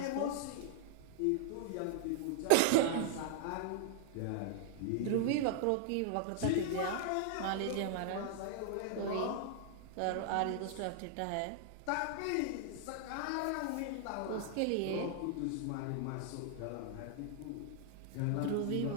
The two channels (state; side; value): different; both; correlation -0.01